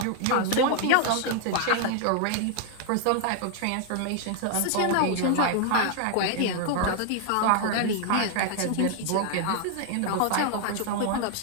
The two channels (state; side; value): different; both; correlation 0.00